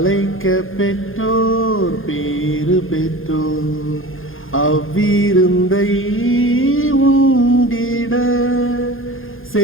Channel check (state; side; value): late; right; 0.60 ms